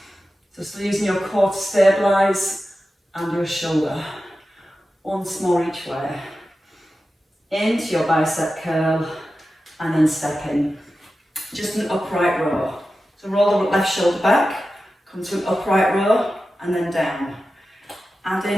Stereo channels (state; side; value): normal; both; correlation 0.93